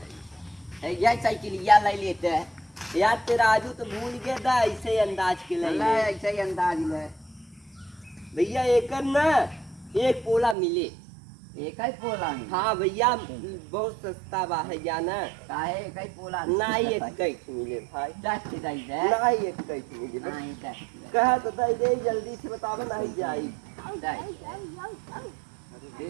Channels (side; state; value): left; drops out; at 10.6 s